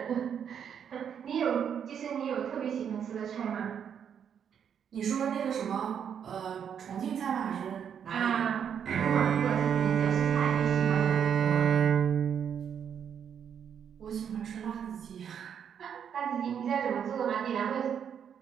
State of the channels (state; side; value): quieter; left; 8.1 dB